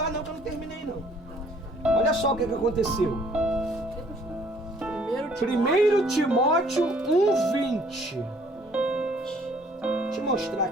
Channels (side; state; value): both; normal; correlation 0.59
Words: não que eu não terminei não. Olha só o que aconteceu. 1 Timóteo 1:20. Deixa eu mostrar